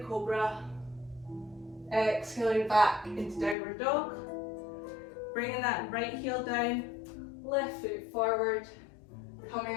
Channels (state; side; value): drops out; right; at 3.6 s